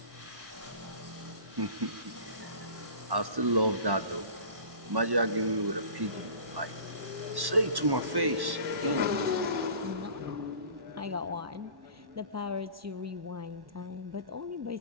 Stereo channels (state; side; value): late; left; 1.1 ms